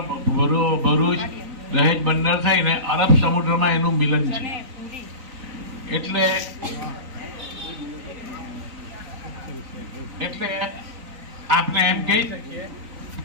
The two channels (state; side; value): late; left; 3.9 ms